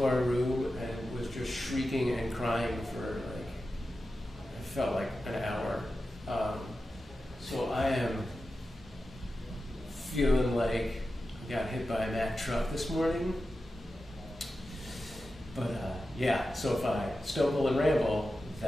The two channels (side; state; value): both; normal; correlation 0.92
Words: our room and was just shrieking and crying for like, it felt like an hour. So I am feeling like I got hit by a Mack truck this morning. But yeah, so if I stumble and ramble,